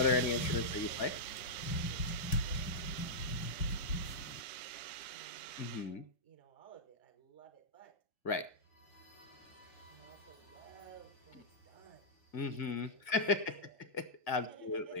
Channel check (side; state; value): right; late; 2.0 ms